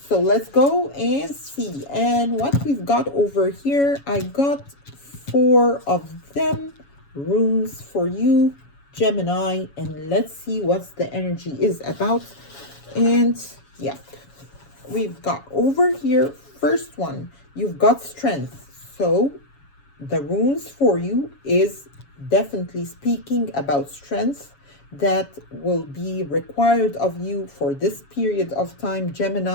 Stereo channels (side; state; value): right; late; 7.2 ms